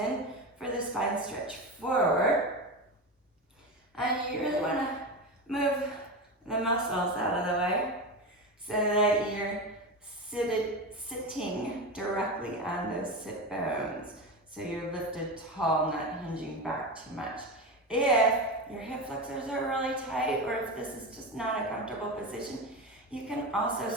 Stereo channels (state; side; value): normal; both; correlation 0.21